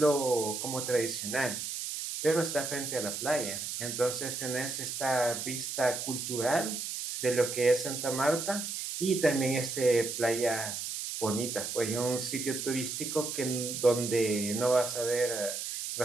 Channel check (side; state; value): right; noise; hiss, 5 dB below the sound